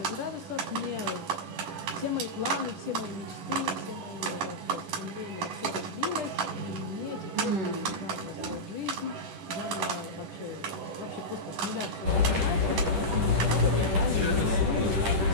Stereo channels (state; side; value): late; left; 11 ms